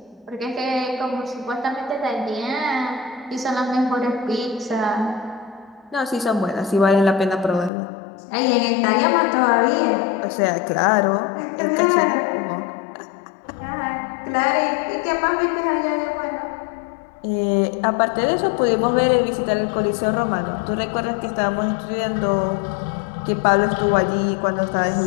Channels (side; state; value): right; drops out; at 7.7 s